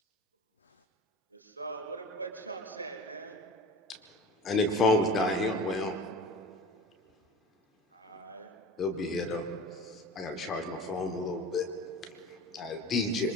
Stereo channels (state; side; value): normal; both; correlation 0.36